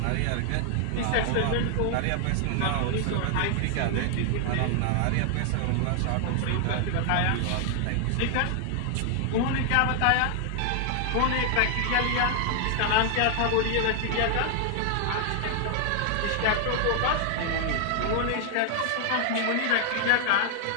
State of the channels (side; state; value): both; different; correlation 0.00